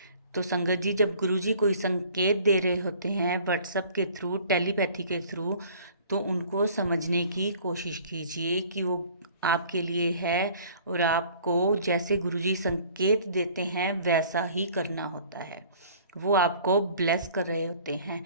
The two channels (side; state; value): both; inverted; correlation -0.51